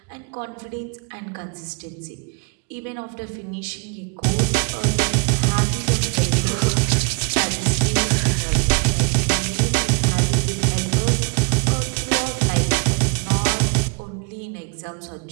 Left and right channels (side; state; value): left; quieter; 34.2 dB